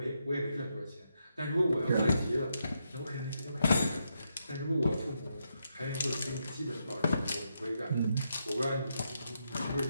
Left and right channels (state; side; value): inverted; both; correlation -0.81